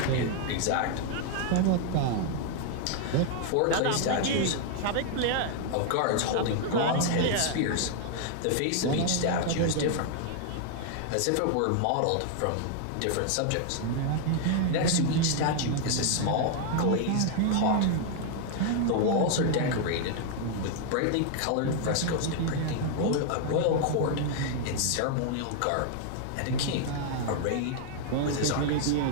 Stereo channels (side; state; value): both; different; correlation 0.00